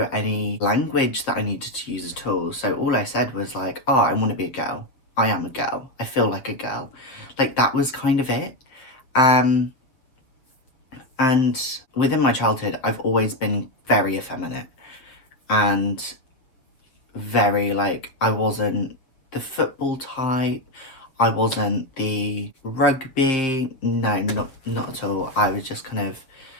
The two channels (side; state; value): right; late; 7.3 ms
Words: any language that I needed to use at all. So all I said was like, oh, I want to be a girl. I am a girl. I feel like a girl. Like, that was kind of it. And within my childhood, I've always been very effeminate and very I wasn't the football type. I wasn't the rugby. No, not at all. I was just kind of